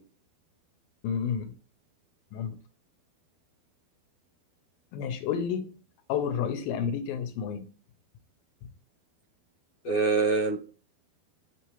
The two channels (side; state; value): right; late; 12 ms